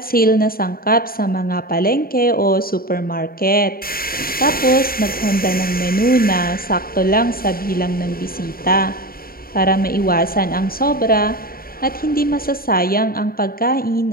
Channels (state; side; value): late; right; 0.43 ms